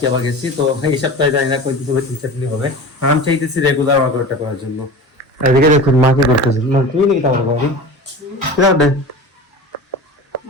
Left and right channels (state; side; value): normal; both; correlation 0.34